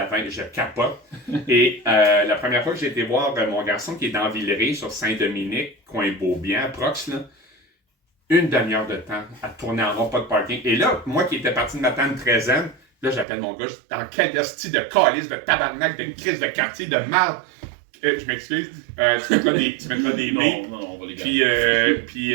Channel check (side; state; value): left; drops out; at 13.2 s